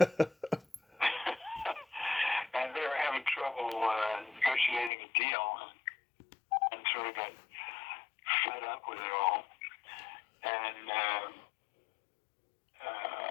And they were having trouble negotiating a deal, and sort of got fed up with it all. And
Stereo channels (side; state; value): right; drops out; at 4.9 s